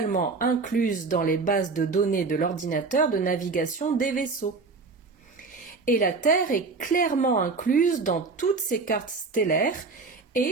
incluses dans les bases de données de l'ordinateur de navigation des vaisseaux. Et la Terre est clairement incluse dans toutes ces cartes stellaires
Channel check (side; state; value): left; quieter; 4.2 dB